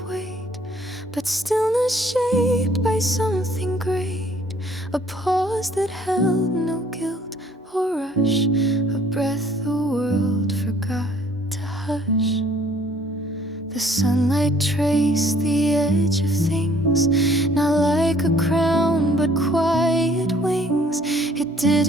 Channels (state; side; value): normal; both; correlation 0.59